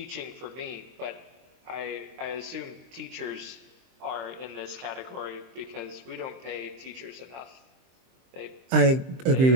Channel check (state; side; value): late; left; 23 ms